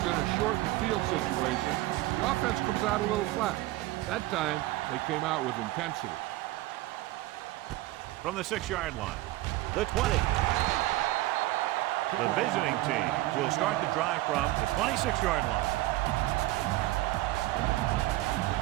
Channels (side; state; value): left; quieter; 17.8 dB